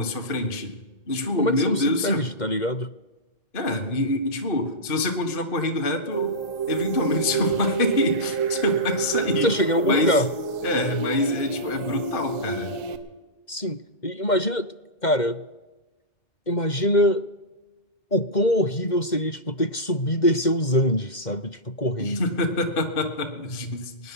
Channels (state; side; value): late; right; 2.1 ms